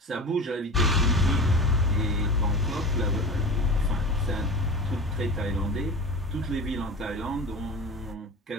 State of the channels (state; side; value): normal; both; correlation 0.32